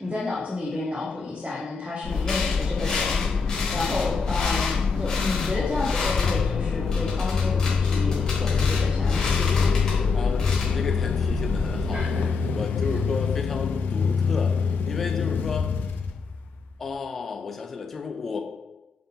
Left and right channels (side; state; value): right; quieter; 4.7 dB